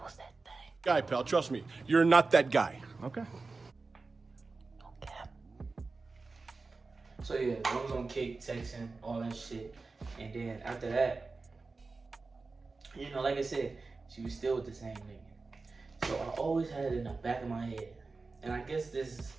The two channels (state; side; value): quieter; left; 3.9 dB